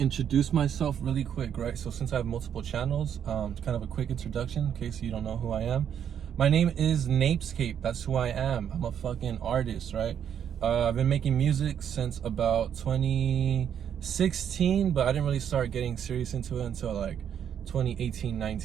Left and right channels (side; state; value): left; quieter; 8.8 dB